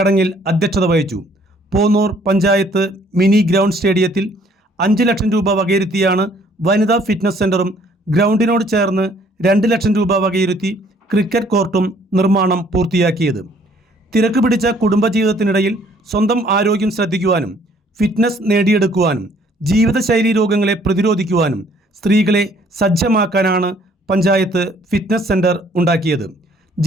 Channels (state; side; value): normal; both; correlation 0.61